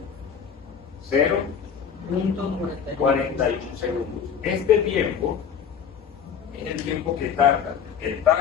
0.41 segundos. Este tiempo es el tiempo que tarda el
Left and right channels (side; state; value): right; quieter; 7.4 dB